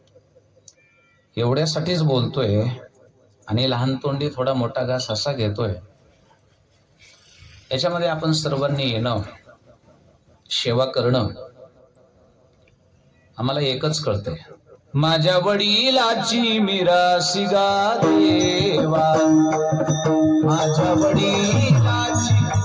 एवढ्यासाठीच बोलतोय आणि लहान तोंडी थोडा मोठा घास असा घेतोय. याच्यामध्ये आपण सर्वांनी येणं, सेवा करणं, आम्हाला एकच कळतंय. माझ्या वडिलाची मिरासी गा देवा, माझ्या वडिलाची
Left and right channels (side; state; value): both; identical; correlation 1.00